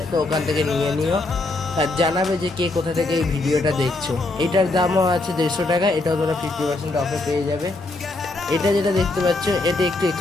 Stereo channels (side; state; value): right; quieter; 3.1 dB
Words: তো ওখান থেকে নিয়ে নিও। আর জানাবে যে কে কোথা থেকে এই ভিডিওটা দেখছো। এটার দামও আছে 150 টাকা, এটাও তোমরা 50% অফে পেয়ে যাবে। এটা যেটা দেখতে পাচ্ছ এটা একটু